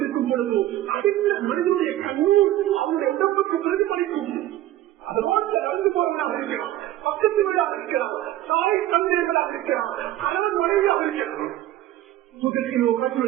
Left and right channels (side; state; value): left; quieter; 14.1 dB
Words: பொழுது அடுத்த மனிதனுடைய கண்ணூர் அவனுடைய உடம்புக்கு பிரதிபலிக்கும். அது ரோட்ல நடந்து போவதாக இருக்கிறான், பக்கத்து வீடாக இருக்கிறான், தாய் தந்தைகளாக இருக்கிறான், கணவன் மனைவியாக இருக்கிறான். முதலிலோ